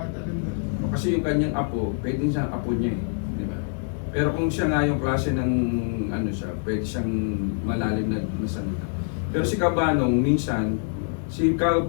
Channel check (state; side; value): silent; right; digital silence